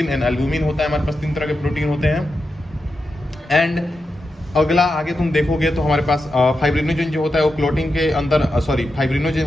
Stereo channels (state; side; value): normal; both; correlation 0.88